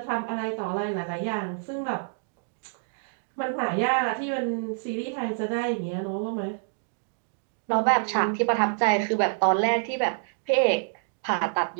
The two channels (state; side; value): silent; left; digital silence